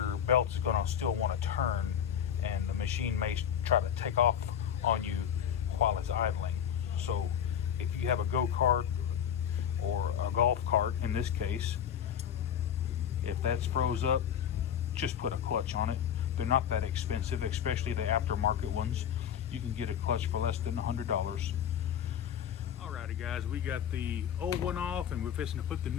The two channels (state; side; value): quieter; right; 9.1 dB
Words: belt is going to still want to turn, and the machine may try to take off on you while it's idling. So if you have a go-kart or a golf cart in this case, if that's froze up, just put a clutch on it. They're not that expensive, especially the aftermarket ones. You can get a clutch for less than $100. Alrighty guys, we got the old one off and we're fixing to put the